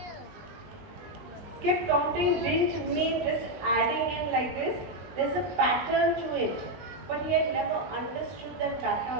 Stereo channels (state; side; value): late; left; 20 ms